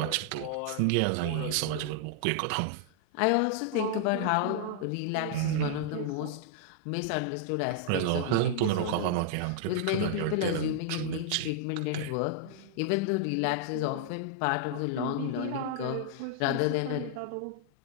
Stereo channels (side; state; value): both; different; correlation -0.01